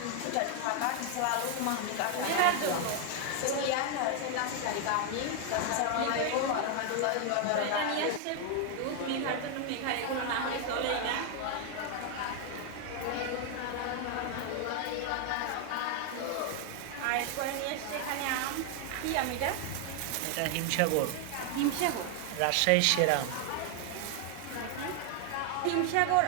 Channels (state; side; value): different; both; correlation 0.00